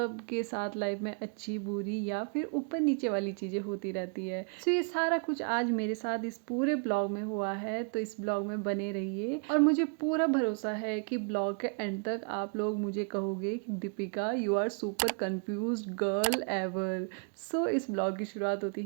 साथ लाइफ में अच्छी बुरी या फिर ऊपर नीचे वाली चीज़ें होती रहती है। तो ये सारा कुछ आज मेरे साथ इस पूरे ब्लॉग में हुआ है, तो इस ब्लॉग में बने रहिए और मुझे पूरा भरोसा है कि ब्लॉग के एंड तक आप लोग मुझे कहोगे कि Deepika you are super confused girl ever. So इस ब्लॉग की शुरुआत होती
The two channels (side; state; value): left; quieter; 39.2 dB